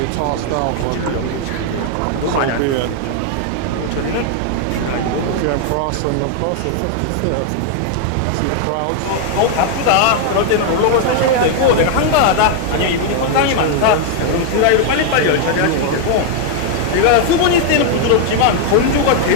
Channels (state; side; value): different; both; correlation 0.00